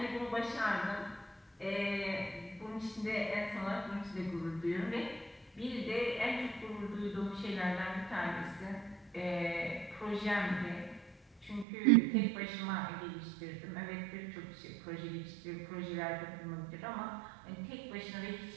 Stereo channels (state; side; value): drops out; left; at 11.7 s